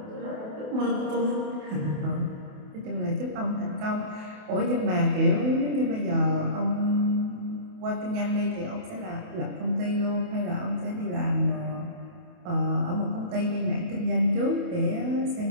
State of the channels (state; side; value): late; left; 28 ms